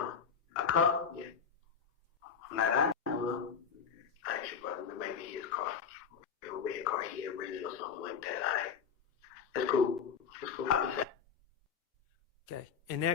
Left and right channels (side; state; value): right; quieter; 6.6 dB